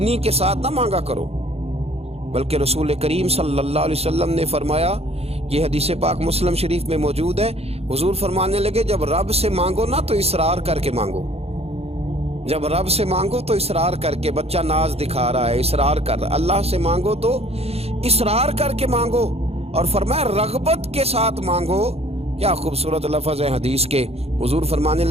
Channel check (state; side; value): late; left; 0.29 ms